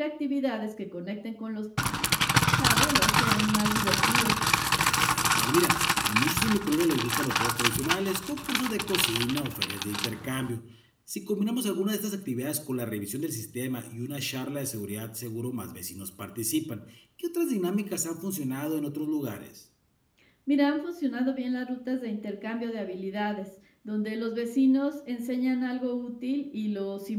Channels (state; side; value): identical; both; correlation 1.00